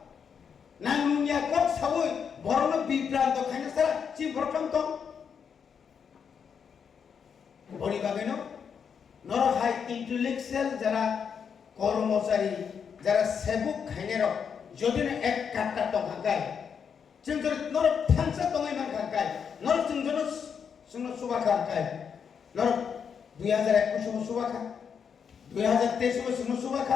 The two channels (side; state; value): right; quieter; 6.9 dB